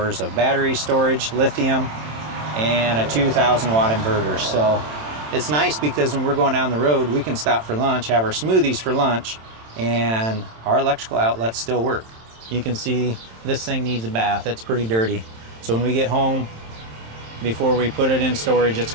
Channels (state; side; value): late; left; 27 ms